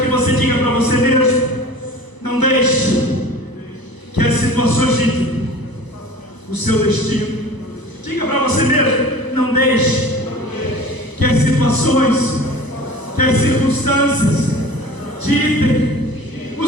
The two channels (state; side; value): late; right; 1.0 ms